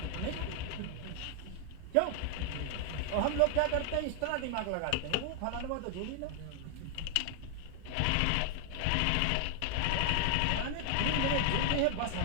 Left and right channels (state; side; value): different; both; correlation 0.00